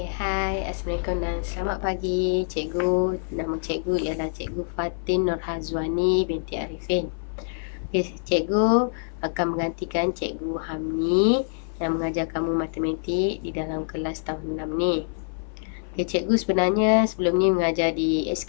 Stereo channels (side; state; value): right; silent; 56 dB below the other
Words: hai, Assalamualaikum dan selamat pagi cikgu. Nama cikgu ialah Cikgu Fatin Nurhazwani binti Arifin. Okey, cikgu akan menggantikan Cikgu Hamni yang mengajar kamu matematik di dalam kelas tahun 6 ni. Okey, cikgu sebenarnya sebelum ni mengajar di